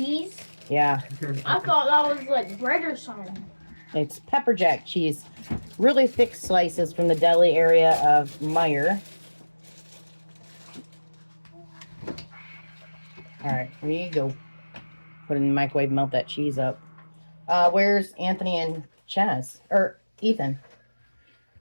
Yeah. I thought that was like bread or something. It's pepper jack cheese. Really thick slices from the deli area of Meyer. Alright, here you go. Put it in the microwave, melt that cheese up. Where's Anthony and Chaz? Or Ethan?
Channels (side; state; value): both; inverted; correlation -1.00